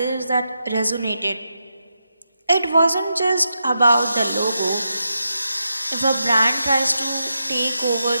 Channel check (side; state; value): both; inverted; correlation -0.86